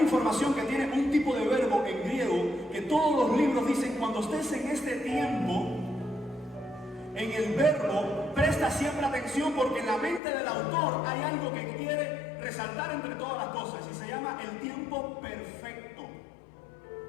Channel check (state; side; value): drops out; right; at 10.2 s